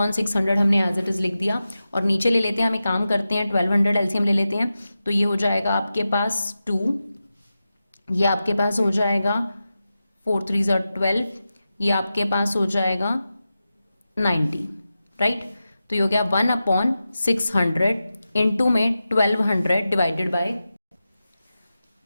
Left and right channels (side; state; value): both; inverted; correlation -0.93